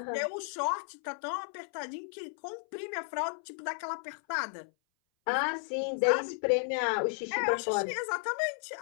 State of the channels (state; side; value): silent; right; 56 dB below the other